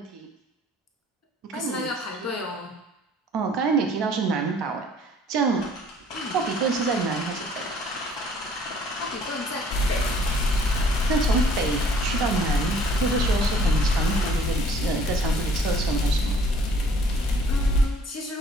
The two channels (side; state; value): both; normal; correlation 0.56